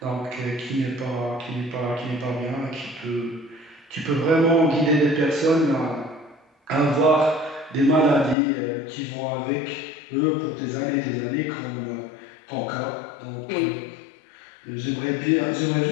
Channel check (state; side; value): drops out; right; at 8.3 s